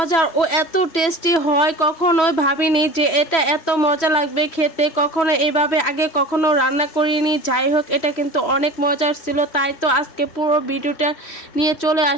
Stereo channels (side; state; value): right; late; 3.1 ms